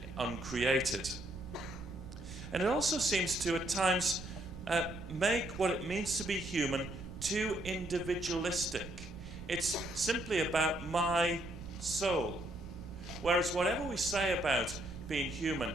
uncreated? And it also seems to, at times, make what it means to be human too individualistic. It's simply about my soul. Whereas whatever we say about being human,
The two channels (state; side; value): noise; right; rumble, 12 dB below the sound